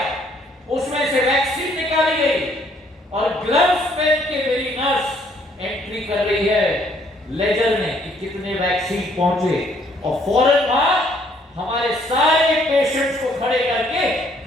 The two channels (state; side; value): normal; both; correlation 0.65